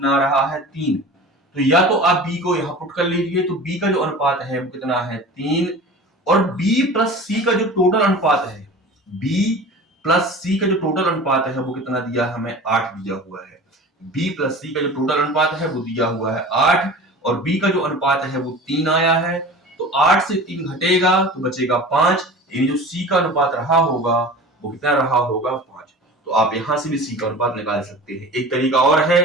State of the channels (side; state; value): both; normal; correlation 0.38